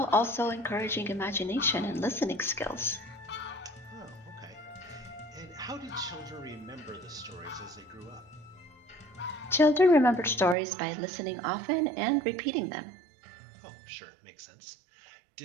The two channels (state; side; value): drops out; left; at 10.6 s